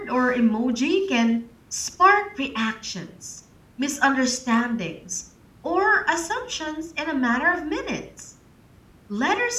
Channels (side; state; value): both; identical; correlation 1.00